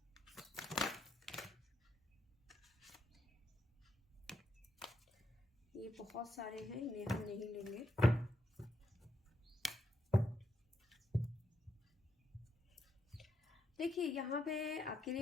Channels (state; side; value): normal; both; correlation 0.80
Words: ये बहुत सारे हैं, इन्हें हम नहीं लेंगे। देखिए यहाँ पे आपके